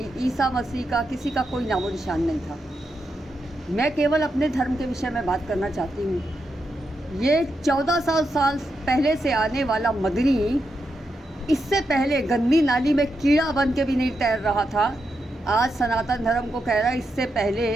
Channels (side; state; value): both; normal; correlation 0.85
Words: ईसा मसीह का किसी का कोई नामो निशान नहीं था। मैं केवल अपने धर्म के विषय में बात करना चाहती हूँ। ये 1400 साल पहले से आने वाला मदनी इससे पहले गंदी नाली में कीड़ा बन के भी नहीं तैर रहा था। आज सनातन धर्म को कह रहा है इससे पहले